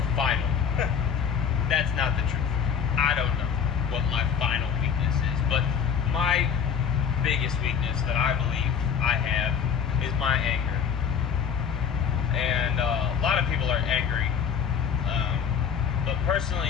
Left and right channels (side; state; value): right; quieter; 7.4 dB